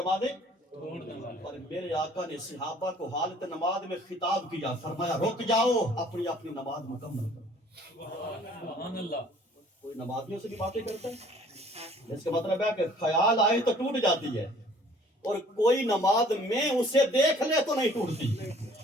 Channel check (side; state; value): both; normal; correlation 0.55